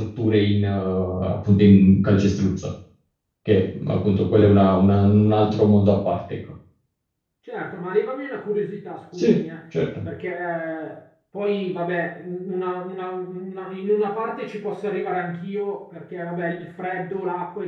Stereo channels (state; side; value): identical; both; correlation 1.00